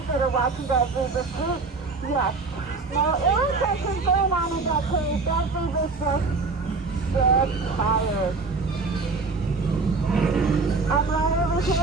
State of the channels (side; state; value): left; quieter; 4.0 dB